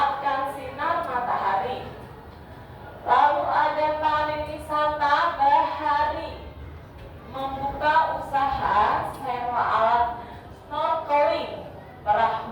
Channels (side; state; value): both; identical; correlation 1.00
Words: sinar matahari. Lalu ada pariwisata bahari, membuka usaha sewa alat snorkeling,